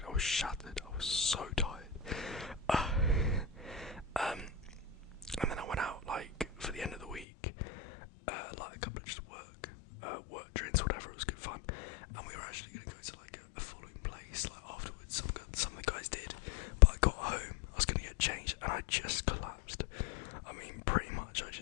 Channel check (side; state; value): right; drops out; at 7.2 s